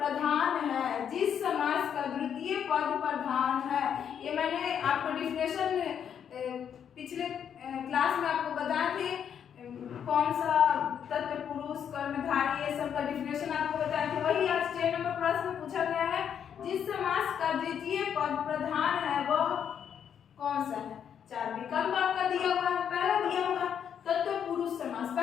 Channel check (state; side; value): quieter; right; 8.4 dB